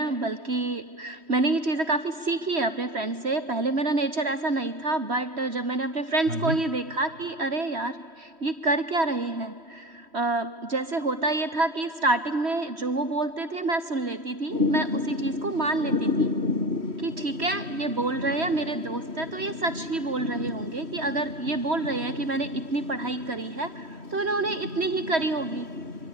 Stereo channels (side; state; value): left; late; 3.1 ms